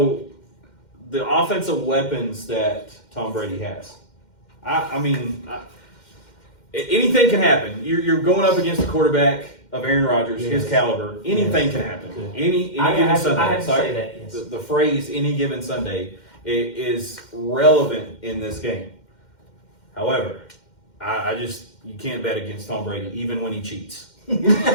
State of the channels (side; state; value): right; late; 2.1 ms